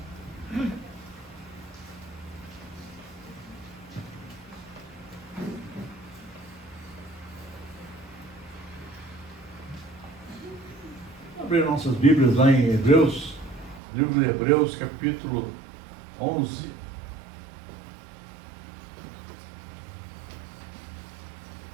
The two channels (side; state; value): left; drops out; at 13.8 s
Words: Abrir nossas Bíblias lá em Hebreus, livro de Hebreus, capítulo 11.